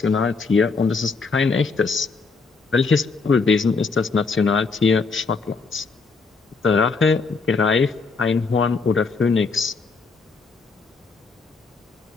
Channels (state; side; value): quieter; right; 4.5 dB